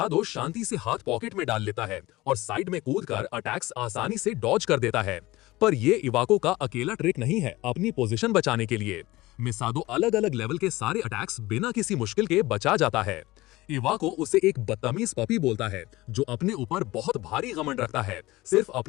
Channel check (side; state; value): right; quieter; 19.2 dB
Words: शांति से हाथ पॉकेट में डाल लेता है और साइड में कूदकर अटैक्स आसानी से डॉज कर देता है। पर ये इवाको का अकेला ट्रिक नहीं है अपनी पोजीशन बचाने के लिए। मिसादो अलग अलग लेवल के सारे अटैक्स बिना किसी मुश्किल के बचा जाता है। इवाको उसे एक बदतमीज पपी बोलता है जो अपने ऊपर बहुत भारी घमंड रखता है, सिर्फ